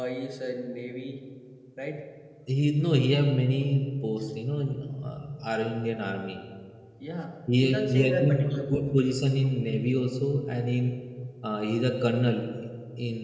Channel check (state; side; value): identical; both; correlation 1.00